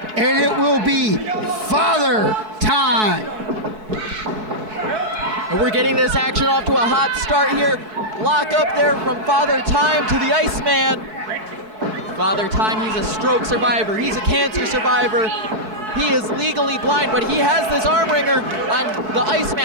and it will be Father Time. And we're getting this action off to a hot start here. Lock up there from Father Time to the Iceman. Father Time, he's a stroke survivor. He's a cancer survivor. He is legally blind, but he has this arm wringer on the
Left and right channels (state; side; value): late; left; 4.6 ms